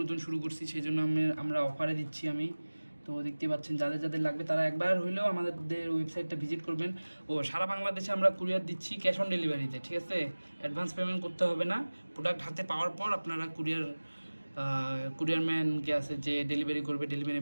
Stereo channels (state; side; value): inverted; both; correlation -1.00